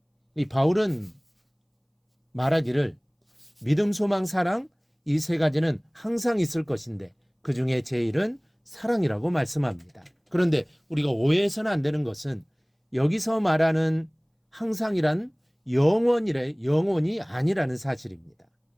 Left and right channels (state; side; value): identical; both; correlation 1.00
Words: 이 바울은 말하기를 믿음, 소망, 사랑 이 세 가지는 항상 있을 것인데 그 중에 제일은 사랑이라고 말씀합니다. 그런데 우리가 오해해서는 안 되는 것은 여기서 말하는 항상이란 영원이 아니라는 사실입니다.